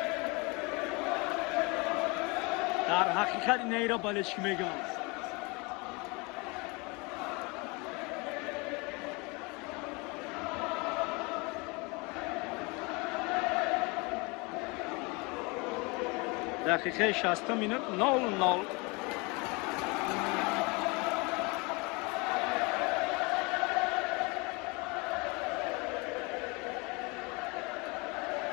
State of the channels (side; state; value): right; quieter; 27.9 dB